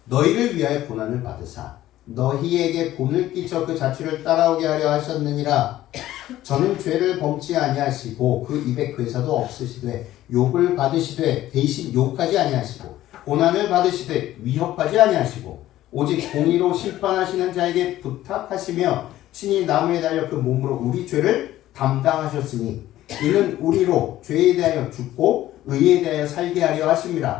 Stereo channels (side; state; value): right; quieter; 14.2 dB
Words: 너희를 위하여 고난을 받으사 너희에게 본을 끼쳐 그 자취를 따라오게 하려 하셨느니라. 저는 죄를 범치 아니하시고 그 입에 괴사도 없으시되 욕을 받으시되 대신 욕하지 아니하시고 고난을 받으시되 위협하지 아니하시고 오직 공의로 심판하시는 자에게 부탁하시며 친히 나무에 달려 그 몸으로 우리 죄를 담당하셨으니 이는 우리로 죄에 대하여 죽고 의에 대하여 살게 하려